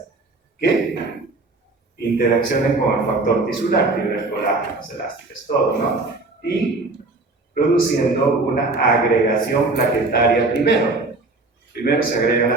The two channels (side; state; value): left; quieter; 3.3 dB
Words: interaccionen con el factor tisular, fibras colágenas, elásticas, todo, ¿no? Y produciendo una agregación plaquetaria primero. Primero se agregan